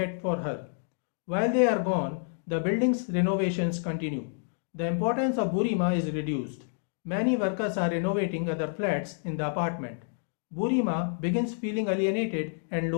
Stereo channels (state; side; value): silent; right; digital silence